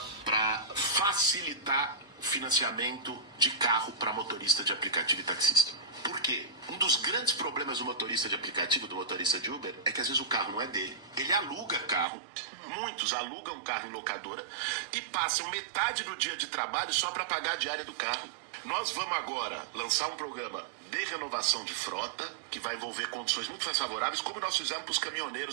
para facilitar o financiamento de carro para motorista de aplicativo e taxista. Por quê? Um dos grandes problemas do motorista de aplicativo, do motorista de Uber, é que às vezes o carro não é dele. Ele aluga carro, muitos alugam carro em locadora e passam metade do dia de trabalho só para pagar a diária do carro. Nós vamos agora lançar um programa de renovação de frota, que vai envolver condições muito mais favoráveis, como nós fizemos para os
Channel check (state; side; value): drops out; left; at 12.1 s